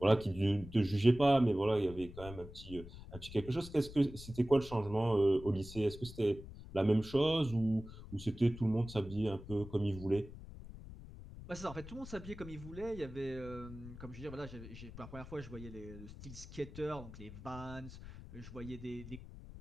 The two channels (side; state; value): left; noise; rumble, 14 dB below the sound